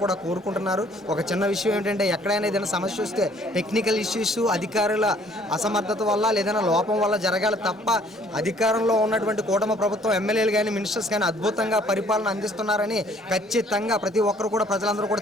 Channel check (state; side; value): normal; both; correlation 0.59